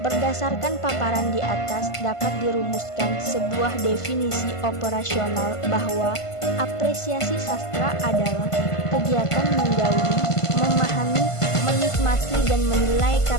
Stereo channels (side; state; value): right; late; 1.5 ms